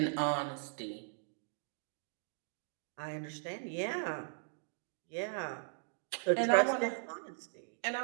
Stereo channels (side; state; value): left; silent; digital silence